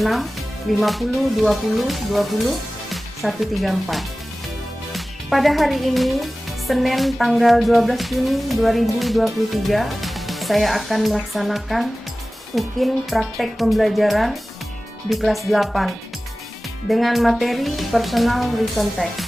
50 20 20 134. Pada hari ini, Senin tanggal 12 Juni 2023, saya akan melaksanakan UKIN praktek pembelajaran di kelas 8 dengan materi personal written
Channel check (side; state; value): both; normal; correlation 0.97